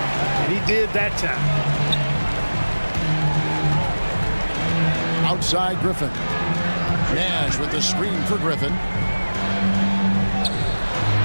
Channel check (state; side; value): inverted; both; correlation -1.00